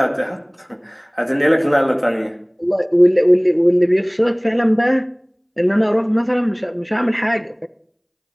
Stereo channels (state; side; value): identical; both; correlation 1.00